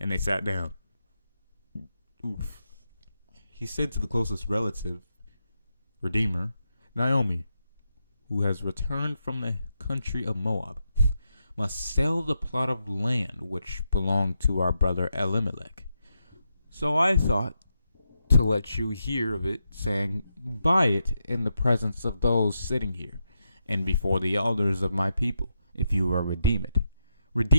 they sat down. Oof. He said to the closest relative, redeemer, Naomi, who has returned from the country of Moab, must sell the plot of land which belonged to our brother Elimelech. So I thought to let you hear of it, saying, "Buy it in the presence of those sitting here, and before the elders of my people, if you will redeem it.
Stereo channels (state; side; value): inverted; both; correlation -0.85